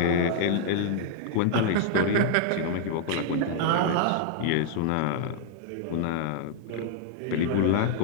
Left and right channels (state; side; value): different; both; correlation -0.01